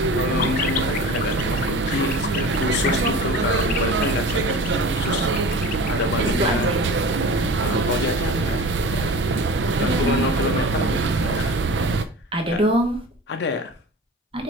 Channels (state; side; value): normal; both; correlation 0.37